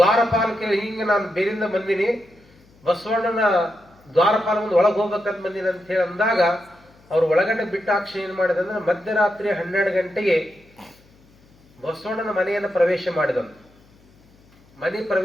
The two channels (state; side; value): noise; left; hum, 29 dB below the sound